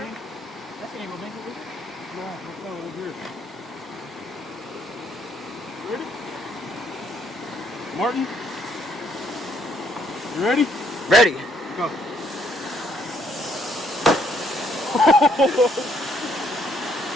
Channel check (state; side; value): normal; both; correlation 0.68